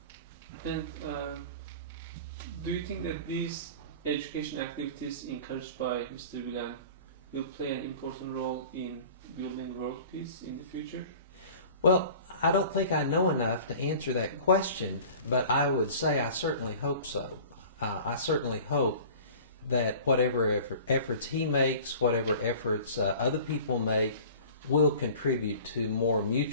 And do you think that these education activities encouraged by Mr. Gülen will play an important role in building world peace in the future? Well, I don't think I know enough to answer that question, but I would say I certainly hope so. I certainly hope that whatever efforts he makes, whatever efforts other people make, will contribute to more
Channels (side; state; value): both; inverted; correlation -0.43